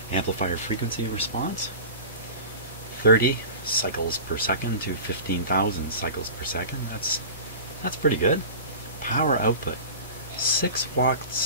amplifier frequency response. 30 cycles per second to 15,000 cycles per second. That's pretty good. Power output, 6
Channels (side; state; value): both; inverted; correlation -0.36